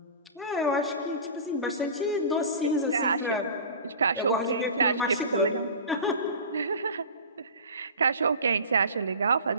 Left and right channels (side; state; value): both; inverted; correlation -0.35